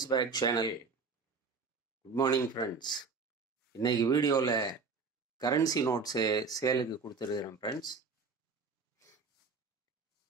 back channel. Good morning friends. இன்னைக்கு வீடியோவில் கரன்சி நோட்ஸு சேலுக்கு கொடுத்துருக்குறேன் ஃப்ரெண்ட்ஸ்.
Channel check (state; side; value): quieter; left; 4.8 dB